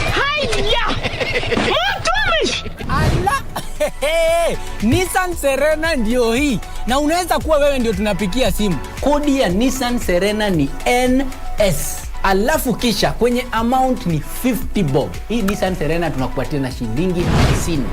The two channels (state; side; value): identical; both; correlation 1.00